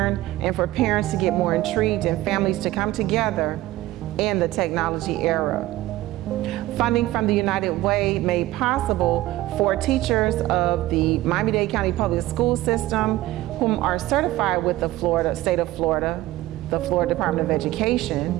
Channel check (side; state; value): left; quieter; 16.6 dB